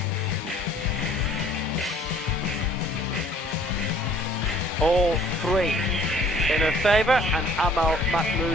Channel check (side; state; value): both; normal; correlation 0.55